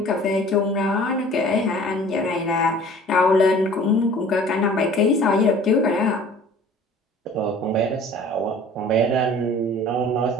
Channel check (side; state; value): both; normal; correlation 0.48